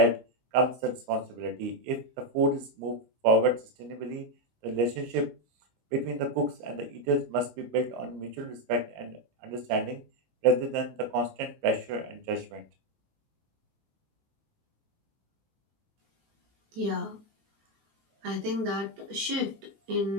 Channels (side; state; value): left; late; 19 ms